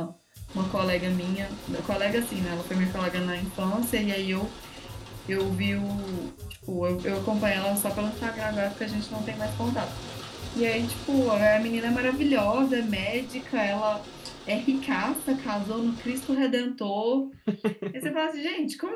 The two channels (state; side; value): identical; both; correlation 1.00